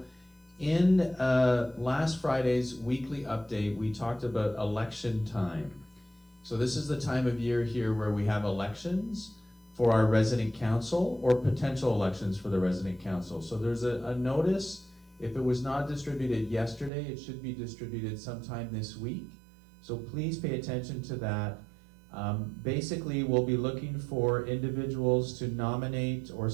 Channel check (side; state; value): left; drops out; at 16.9 s